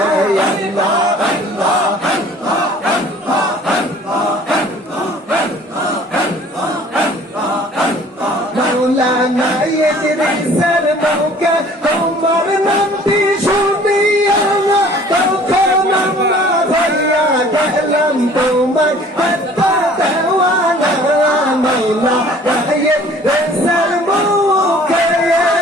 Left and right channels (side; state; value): both; normal; correlation 0.52